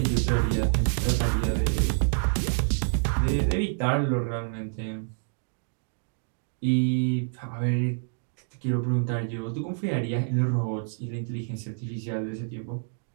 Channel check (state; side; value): silent; left; digital silence